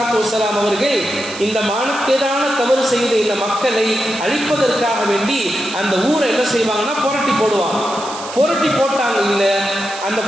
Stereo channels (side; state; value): right; noise; hiss, 12 dB below the sound